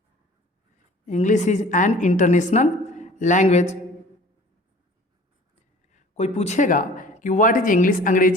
English is an international language. कोई पूछेगा कि व्हाट इज इंग्लिश,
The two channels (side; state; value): both; normal; correlation 0.47